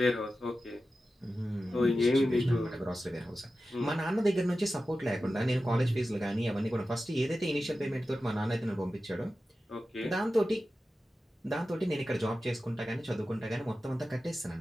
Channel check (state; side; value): normal; both; correlation 0.93